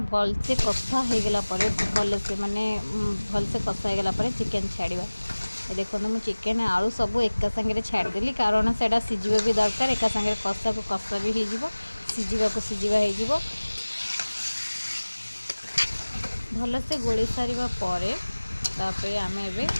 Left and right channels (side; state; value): both; inverted; correlation -1.00